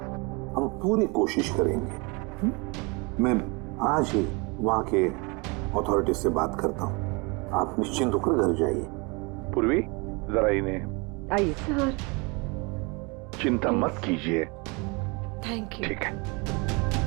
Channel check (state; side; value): quieter; left; 29.1 dB